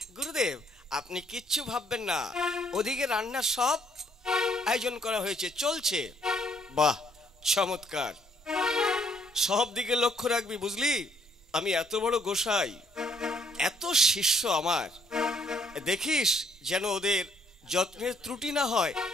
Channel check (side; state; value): both; normal; correlation 0.67